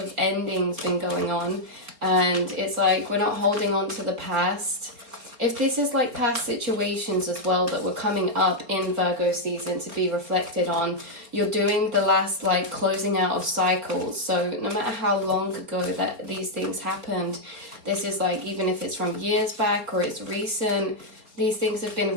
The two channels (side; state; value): left; late; 4.4 ms